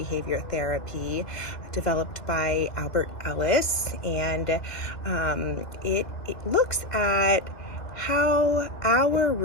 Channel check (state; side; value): late; right; 2.1 ms